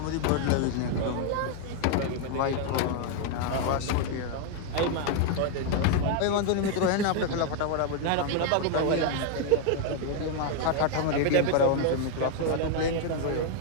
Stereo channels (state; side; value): different; both; correlation 0.00